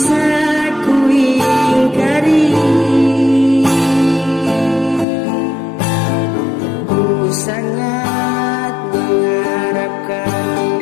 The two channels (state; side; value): drops out; right; at 5.1 s